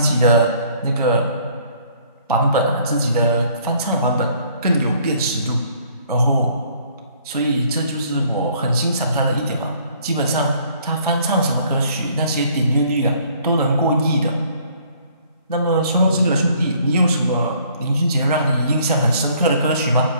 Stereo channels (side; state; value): both; inverted; correlation -0.60